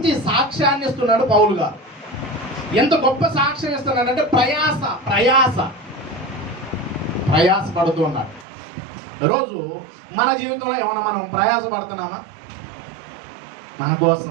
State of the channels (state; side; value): drops out; left; at 8.5 s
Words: సాక్ష్యాన్ని ఇస్తున్నాడు పౌలు గారు. ఎంత గొప్ప సాక్ష్యం ఇస్తున్నాడంటే ప్రయాసపడుతూ ఉన్నాడు. రోజు మన జీవితంలో ఏమన్నా మనం ప్రయాసపడుతున్నామా? మన